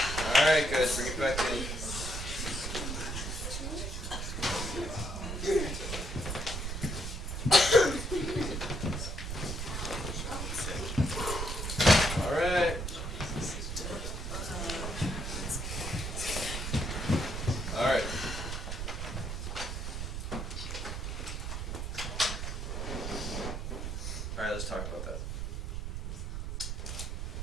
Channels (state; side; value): noise; right; rumble, 4 dB below the sound